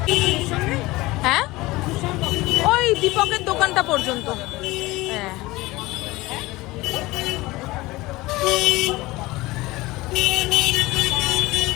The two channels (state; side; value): quieter; right; 20.2 dB